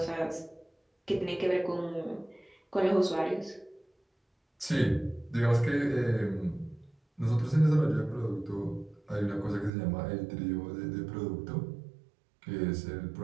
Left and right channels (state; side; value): drops out; left; at 9.7 s